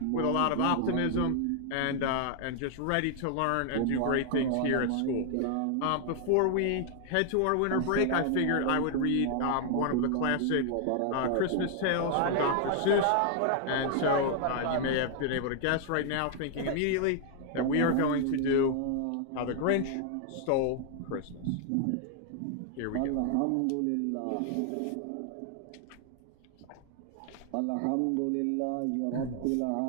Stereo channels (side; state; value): both; different; correlation 0.00